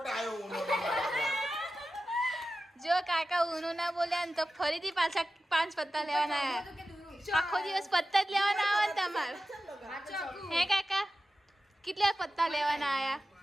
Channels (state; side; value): normal; both; correlation 0.93